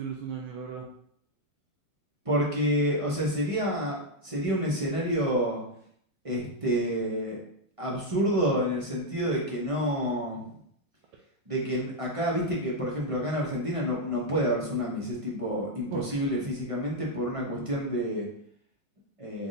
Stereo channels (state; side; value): late; left; 1.5 ms